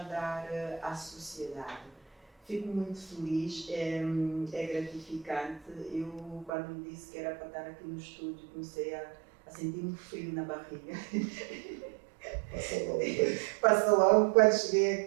dar à sociedade. Fico muito feliz, é gratificante. Eu, quando me disse que era para estar aqui no estúdio, comecei a sentir um frio na barriga. Passa logo quando cheguei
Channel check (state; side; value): drops out; left; at 6.5 s